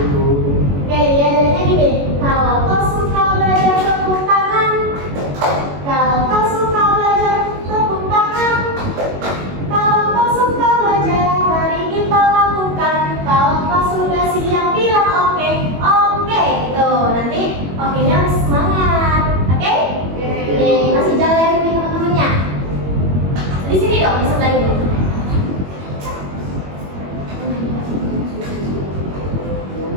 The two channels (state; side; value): late; left; 21 ms